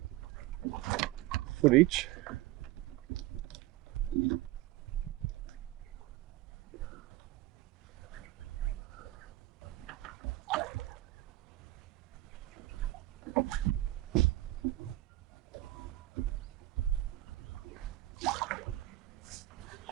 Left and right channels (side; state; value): left; quieter; 17.0 dB